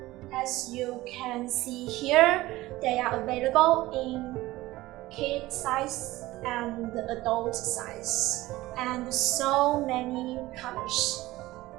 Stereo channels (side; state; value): left; quieter; 17.9 dB